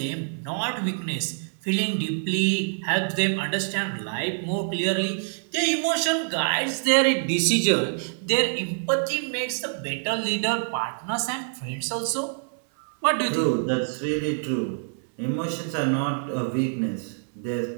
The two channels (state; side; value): silent; left; 61 dB below the other